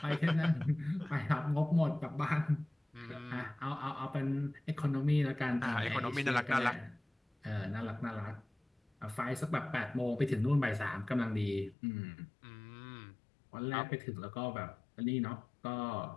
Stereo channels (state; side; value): drops out; right; at 11.8 s